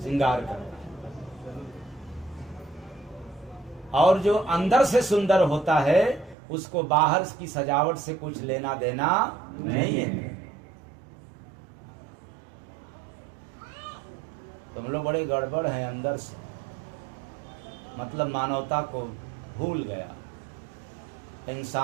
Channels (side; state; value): left; drops out; at 6.4 s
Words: श्रृंगार करता है। और जो अंदर से सुंदर होता है, उसको बाहर की सजावट से कुछ लेना देना नहीं है। तुम लोग बड़े गड़बड़ हैं अंदर से, मतलब मानवता को भूल गया,